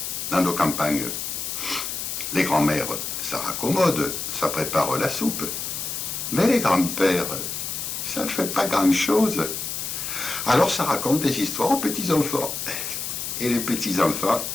dans nos campagnes, les grands-mères, ça raccommode, ça prépare la soupe. Mais les grands-pères, ça ne fait pas grand-chose. Alors ça raconte des histoires aux petits-enfants. Et les petits-enfants,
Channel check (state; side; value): noise; left; hiss, 4 dB below the sound